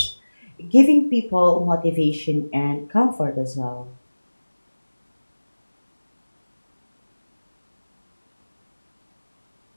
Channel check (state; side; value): inverted; both; correlation -1.00